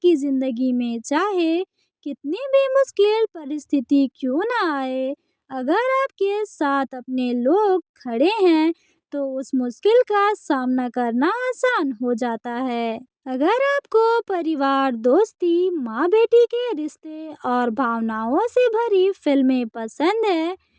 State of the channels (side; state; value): both; identical; correlation 1.00